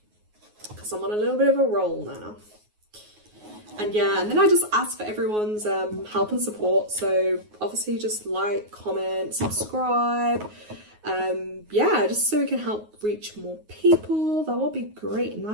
because I'm on a little bit of a roll now. And yeah, and then I just ask for everyone's help and support. So obviously just like, comment, subscribe. Yeah, just so we can help reach more people. That will be great.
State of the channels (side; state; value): left; late; 9.5 ms